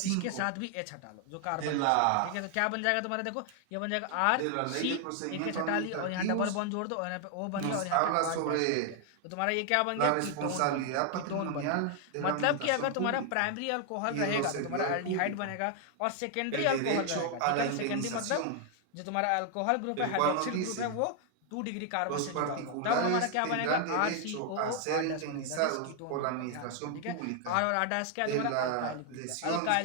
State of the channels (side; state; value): both; different; correlation 0.00